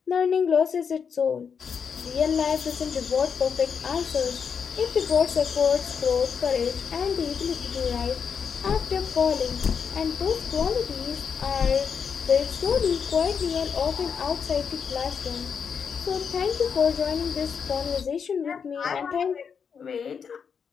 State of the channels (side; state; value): right; quieter; 6.6 dB